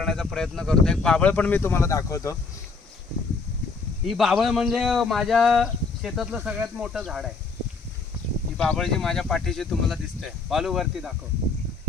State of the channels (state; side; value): quieter; right; 4.4 dB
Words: प्रयत्न करतो। एक बाबळ पण मी तुम्हाला दाखवतो। ही बाबळ म्हणजे माझ्या शेतातलं सगळ्यात मोठं झाड आहे। ही बाबळ जी माझ्या पाठीशी तुम्हाला दिसते, बालूवरती दाखव,